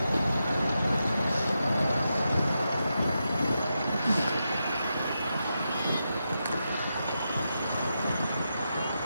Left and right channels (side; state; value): both; inverted; correlation -0.87